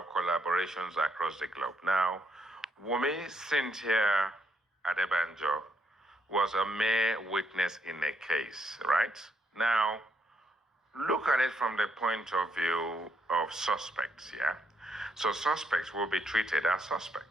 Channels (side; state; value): both; normal; correlation 0.76